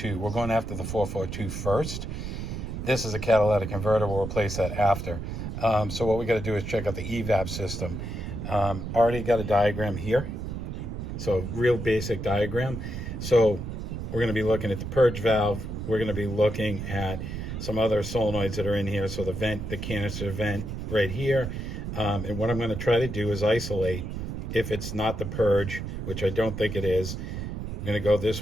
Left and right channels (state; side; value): noise; right; rumble, 6 dB below the sound